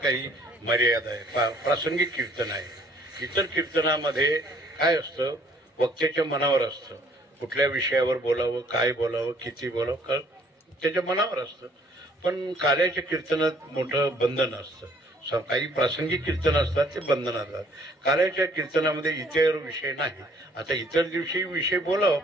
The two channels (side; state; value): both; normal; correlation 0.60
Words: मर्यादा आहे, प्रासंगिक कीर्तन आहे. इतर कीर्तनामध्ये काय असतं, वक्त्याच्या मनावर असतं, कुठल्या विषयावर बोलावं, काय बोलावं, किती बोलावं, त्याच्या मनावर असतं. पण कार्याच्या कीर्तनात मोठं बंधन असतं. काही प्रासंगिक कीर्तन असतात ते बंधन असतात. कार्याच्या कीर्तनामध्ये इतर विषय नाही. आता इतर दिवशी विषय बोलावं,